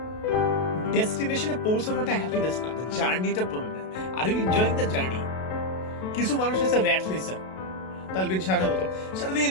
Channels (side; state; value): right; late; 32 ms